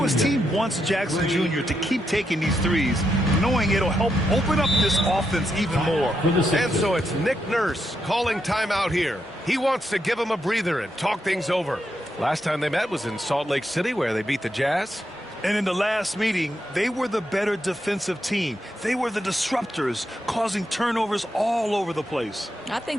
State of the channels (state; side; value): normal; both; correlation 0.82